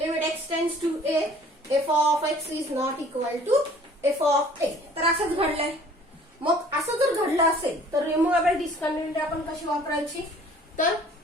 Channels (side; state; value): both; normal; correlation 0.52